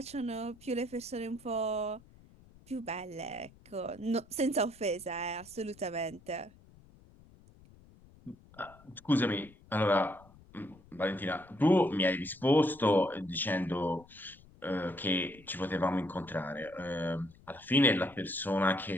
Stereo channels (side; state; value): left; noise; rumble, 25 dB below the sound